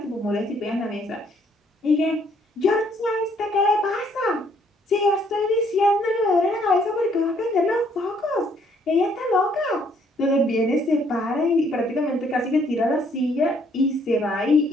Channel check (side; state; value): both; normal; correlation 0.66